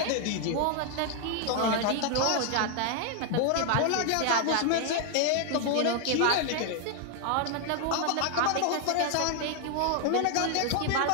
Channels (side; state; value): both; different; correlation 0.00